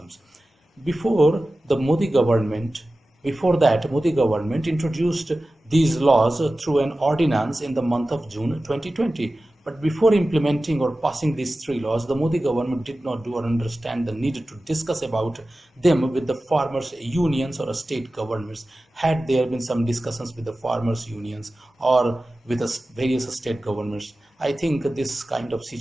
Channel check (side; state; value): both; normal; correlation 0.95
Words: Before the Modi government, Before that, Modi government introduced these laws through an ordinance in the month of June 2020. But before implementing or passing these three laws, the Modi government did not do or understand the need to discuss about them with the farmers' unions or state governments. Had there been some discussions with the farmers' unions or with the various state governments, I think this kind of